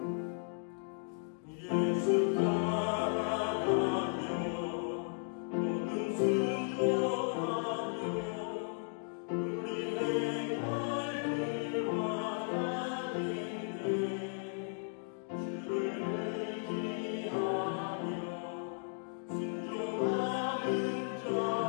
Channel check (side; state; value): right; silent; 54 dB below the other